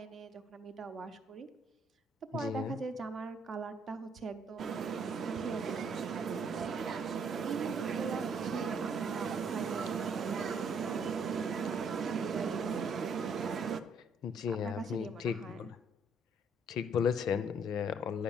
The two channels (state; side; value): normal; both; correlation 0.66